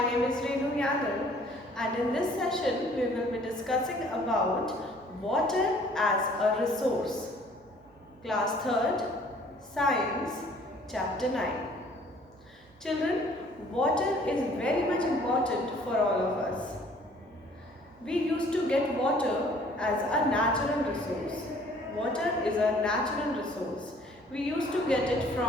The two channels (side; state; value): both; normal; correlation 0.56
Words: is Renu Yadav and in this session we will be discussing about water as a resource. Class 3rd, Science, Chapter 9. Children, water is very much important for all of us. We used to get water as a natural resource. Water is a natural resource. We used to get it